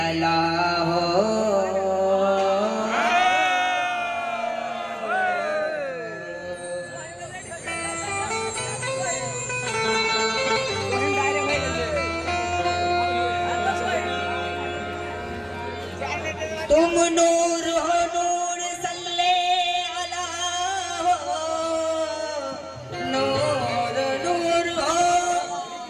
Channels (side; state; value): both; identical; correlation 1.00